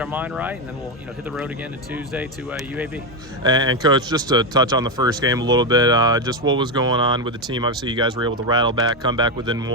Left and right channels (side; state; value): both; normal; correlation 0.09